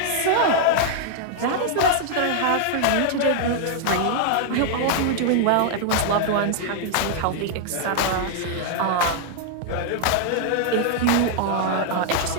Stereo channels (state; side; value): different; both; correlation 0.00